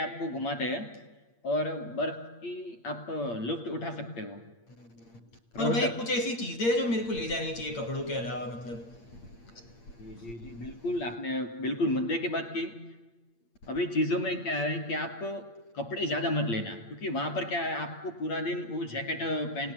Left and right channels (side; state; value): right; late; 8.6 ms